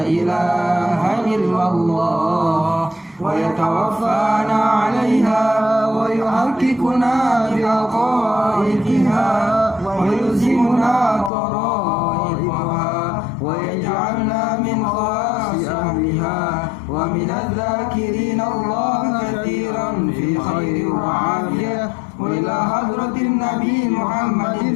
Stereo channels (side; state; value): right; drops out; at 11.3 s